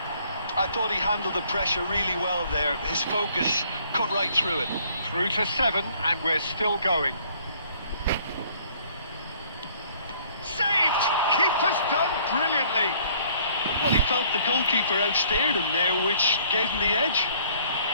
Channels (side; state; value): both; inverted; correlation -0.60